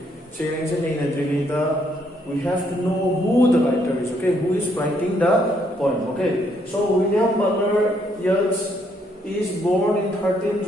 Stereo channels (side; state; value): both; normal; correlation 0.71